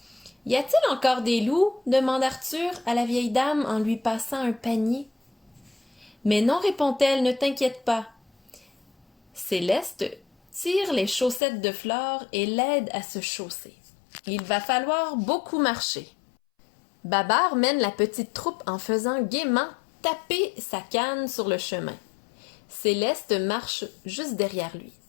Y a-t-il encore des loups? Demande Arthur à la vieille dame en lui passant un panier. Mais non, répond-elle, ne t'inquiète pas. Céleste tire les chaussettes de Flore et l'aide à se chausser. Il va falloir beaucoup marcher. Babar mène la petite troupe en faisant gaiement taper sa canne sur le chemin. Céleste marche juste derrière lui.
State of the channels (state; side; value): drops out; right; at 11.4 s